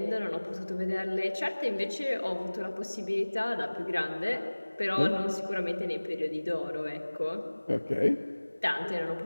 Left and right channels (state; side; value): inverted; both; correlation -1.00